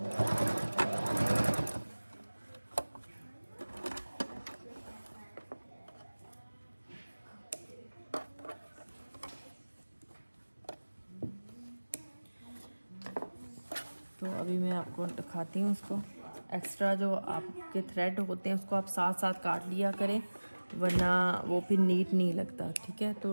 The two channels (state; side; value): inverted; both; correlation -1.00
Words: तो अभी मैं आपको दिखाती हूँ इसको। एक्स्ट्रा जो आपके थ्रेड होते हैं उसको आप साथ साथ काट लिया करें, वरना वो फिर नीट नहीं लगता। ठीक है, तो